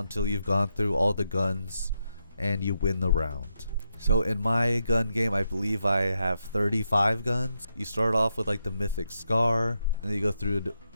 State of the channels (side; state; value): both; inverted; correlation -0.84